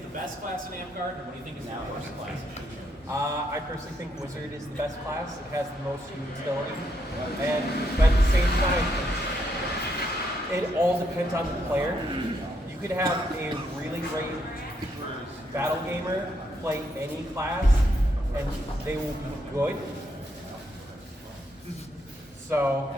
best class in Amgard, and what do you think is the worst class? I personally think Wizard is the best class. It has the most utility. But at the same time, it all depends on the player. You could have a really great battle gamer play any class, and they will be good. So,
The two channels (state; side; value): normal; both; correlation 0.77